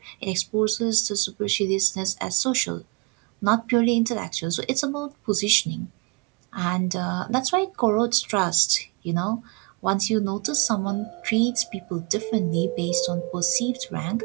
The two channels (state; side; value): quieter; left; 29.3 dB